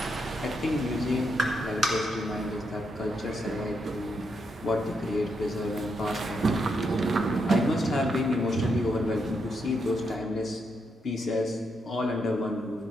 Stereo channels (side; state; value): both; normal; correlation 0.80